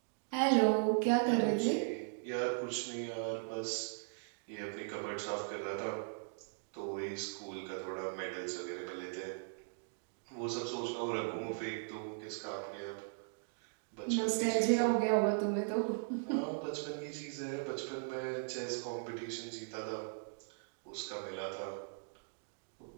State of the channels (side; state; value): left; silent; digital silence